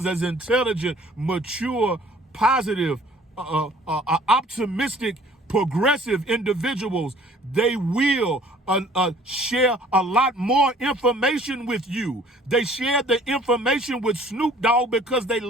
as intelligent, mature, positive, optimistic, progressive individuals. They will share a lot more information with you. They share the information with Snoop Dogg because they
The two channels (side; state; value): both; normal; correlation 0.54